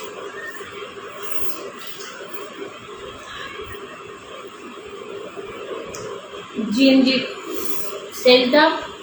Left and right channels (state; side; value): identical; both; correlation 1.00